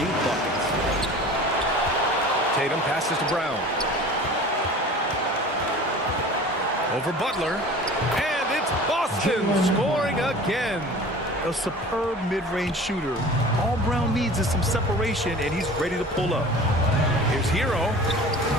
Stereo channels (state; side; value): normal; both; correlation 0.41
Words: buckets. Tatum passes to Brown. Over Butler. And it's Boston scoring again. A superb mid-range shooter. All Brown needs is some separation, and he's ready to pull up. Here's Hero.